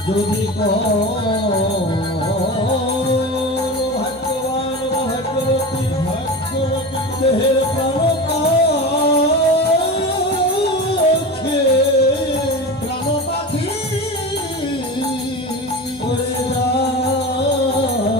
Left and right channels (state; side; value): normal; both; correlation 0.28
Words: যদি ভাগ্যবান বা ভাগ্যবতী দেহের প্রাণ প্রাণ পাখি করে